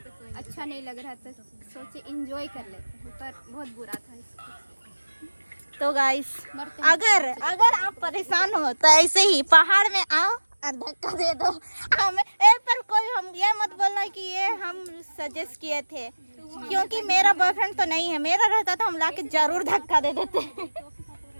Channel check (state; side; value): inverted; both; correlation -1.00